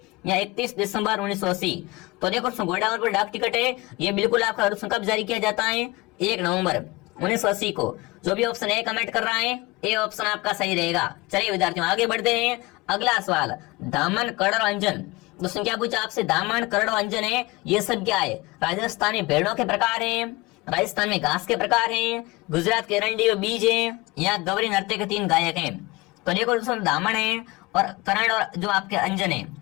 या 31 दिसंबर 1980? तो देखो घोड़ावन पर डाक टिकट है, ये बिल्कुल आपका कब जारी किया जाता है? 1 नवंबर 1980 को। जो भी ऑप्शन ए कमेंट कर रहा है, ए ऑप्शन आपका सही रहेगा। चलिए विद्यार्थियों आगे बढ़ते हैं। अगला सवाल, दामन, कड़ और अंजन। दोस्तों क्या पूछा आपसे? दामन, कड़ और अंजन है, ये सब क्या है? राजस्थान में भेड़ों के प्रकार हैं, राजस्थान में घास के प्रकार हैं, गुजरात के रंडी और बीज हैं, या गवरी नृत्य के 3 गायक हैं? तो देखो दोस्तों दामन है और करण और जो आपके अंजन है,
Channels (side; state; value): right; quieter; 22.6 dB